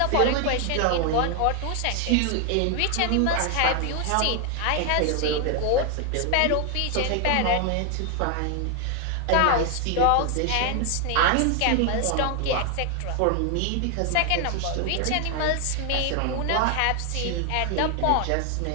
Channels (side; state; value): both; different; correlation 0.00